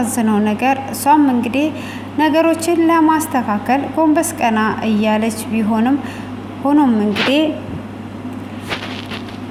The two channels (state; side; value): identical; both; correlation 1.00